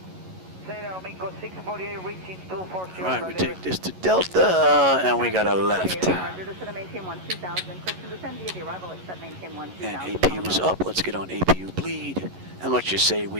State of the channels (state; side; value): late; left; 11 ms